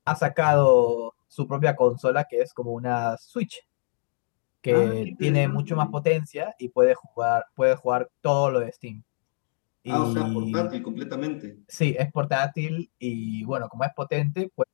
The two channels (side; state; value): right; silent; digital silence